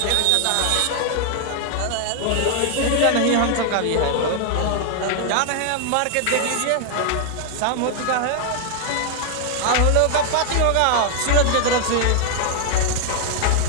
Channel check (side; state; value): both; different; correlation 0.00